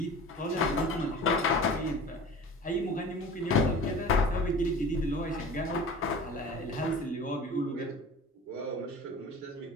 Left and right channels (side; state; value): both; normal; correlation 0.39